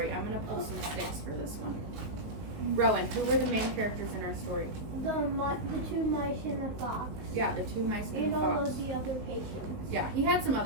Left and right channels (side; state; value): left; late; 19 ms